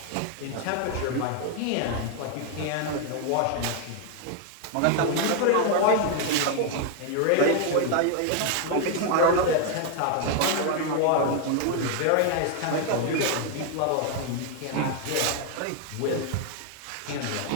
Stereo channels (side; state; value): both; different; correlation 0.00